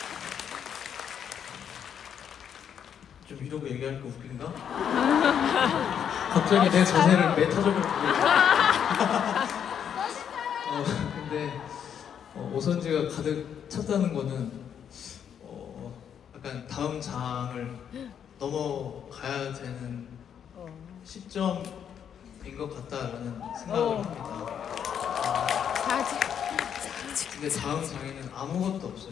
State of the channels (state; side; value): quieter; right; 8.4 dB